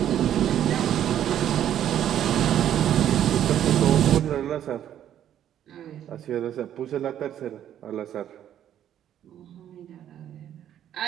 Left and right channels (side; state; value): left; quieter; 10.7 dB